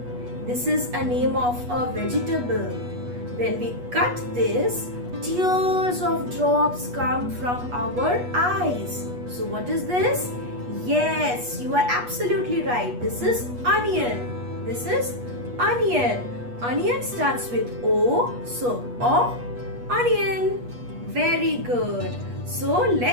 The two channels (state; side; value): late; left; 8.3 ms